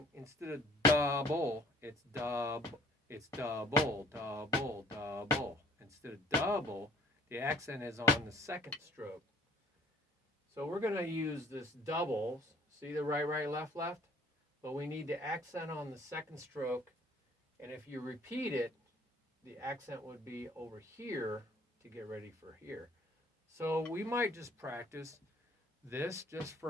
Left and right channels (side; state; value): both; normal; correlation 0.55